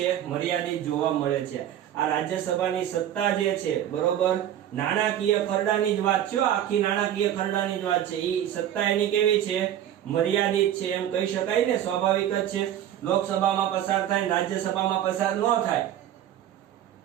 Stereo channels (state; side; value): quieter; left; 11.1 dB